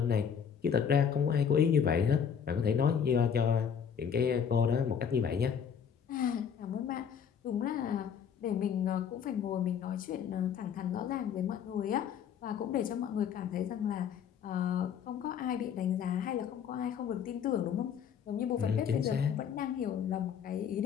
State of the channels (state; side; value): quieter; right; 7.6 dB